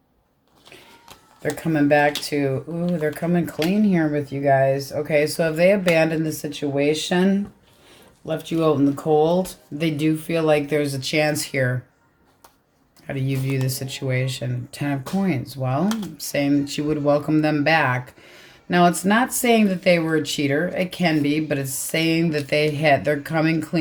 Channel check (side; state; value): both; identical; correlation 1.00